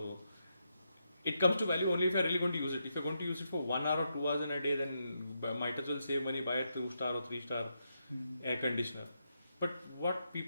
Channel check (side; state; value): both; inverted; correlation -0.82